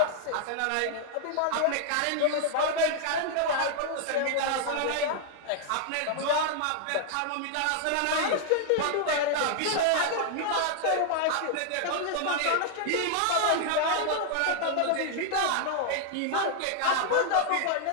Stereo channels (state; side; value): different; both; correlation 0.00